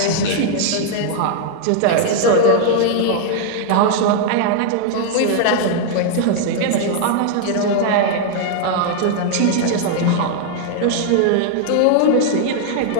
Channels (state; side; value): different; both; correlation 0.00